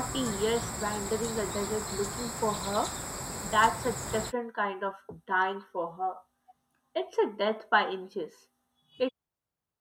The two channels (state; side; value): identical; both; correlation 1.00